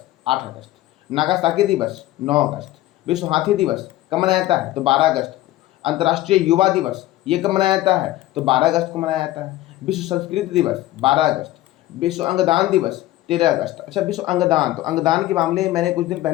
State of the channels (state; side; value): quieter; right; 15.8 dB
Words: 8 अगस्त, नागासाकी दिवस 9 अगस्त, विश्व हाथी दिवस कब मनाया जाता है? तो 12 अगस्त को, अंतर्राष्ट्रीय युवा दिवस ये कब मनाया जाता है? तो 12 अगस्त को मनाया जाता है, विश्व संस्कृत दिवस 12 अगस्त, विश्व अंगदान दिवस 13 अगस्त। अच्छा, विश्व अंगदान, तो अंगदान के मामले में मैंने कुछ दिन